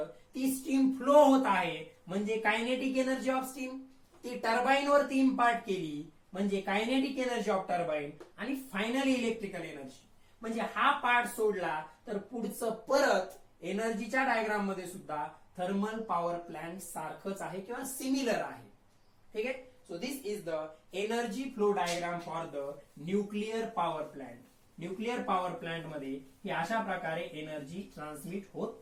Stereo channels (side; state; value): both; identical; correlation 1.00